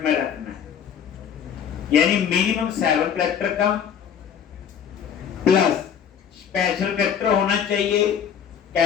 में रखना है, यानी मिनिमम 7 कैरेक्टर का प्लस स्पेशल कैरेक्टर होना चाहिए,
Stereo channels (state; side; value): quieter; right; 8.1 dB